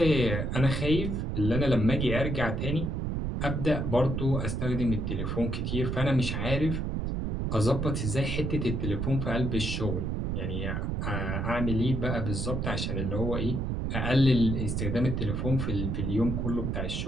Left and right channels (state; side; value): noise; right; rumble, 1 dB below the sound